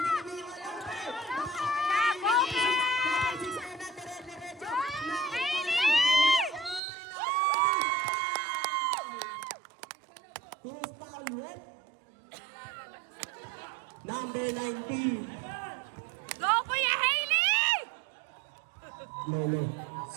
wala pa rin. Dire-diretso. Who's foul red? Number 19. Go, Kuya Hailey! Lolo.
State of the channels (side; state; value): left; drops out; at 6.8 s